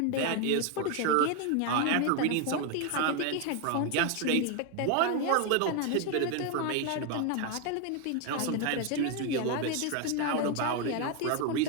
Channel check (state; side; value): different; both; correlation 0.01